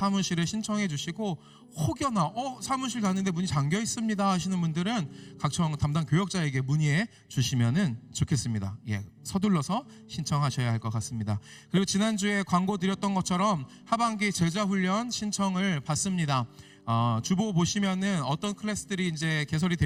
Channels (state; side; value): identical; both; correlation 1.00